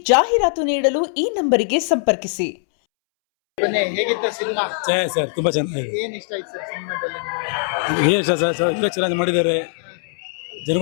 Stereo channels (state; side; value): silent; right; 65 dB below the other